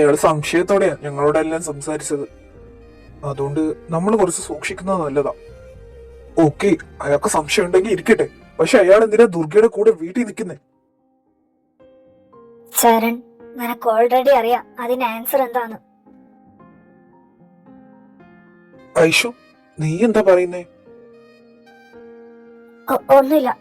സംശയത്തോടെയാ ഞങ്ങളോടെല്ലാം സംസാരിച്ചത്. അതുകൊണ്ട് നമ്മൾ കുറച്ച് സൂക്ഷിക്കുന്നത് നല്ലതാ. ഓക്കെ, അയാൾക്ക് സംശയം ഉണ്ടെങ്കിൽ ഇരിക്കട്ടെ. പക്ഷെ അയാൾ എന്തിനാ ദുർഗയുടെ കൂടെ വീട്ടിൽ നിൽക്കുന്നേ? ചരൺ, നിനക്ക് ഓൾറെഡി അറിയാം അതിന് ആൻസർ എന്താന്ന്. ഐഷു, നീ എന്താ പറയുന്നേ? ഒന്നുമില്ല.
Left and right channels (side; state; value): both; identical; correlation 1.00